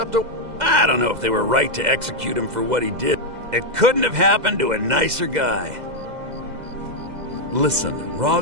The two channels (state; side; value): late; left; 2.0 ms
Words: to... I don't know if they were right to execute him for what he did. It couldn't have happened to a nicer guy. Listen,